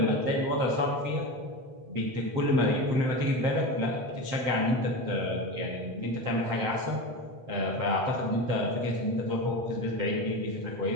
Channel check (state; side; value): late; left; 7.7 ms